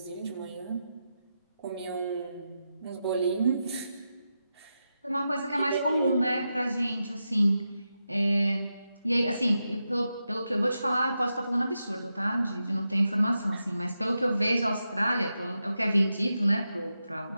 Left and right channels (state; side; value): inverted; both; correlation -0.88